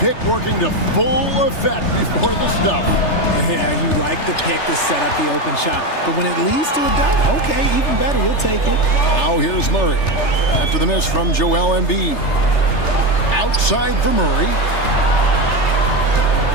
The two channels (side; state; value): right; late; 3.3 ms